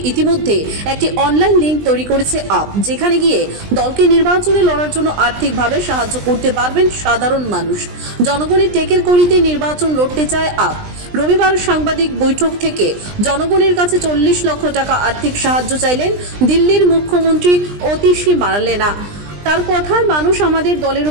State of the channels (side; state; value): left; late; 20 ms